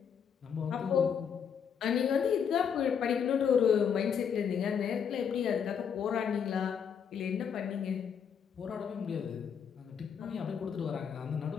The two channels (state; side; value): quieter; right; 7.4 dB